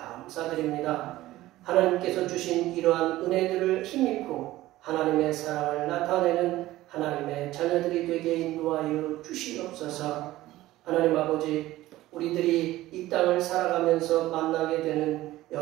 하나님께서 주신 이러한 은혜들을 힘입고 하나님의 사랑을 나타내는 하나님의 자녀들이 되게 인도하여 주시옵소서. 하나님 아버지, 우리들이 이 땅을 살아가면서 만나게 되는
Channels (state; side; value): quieter; left; 16.3 dB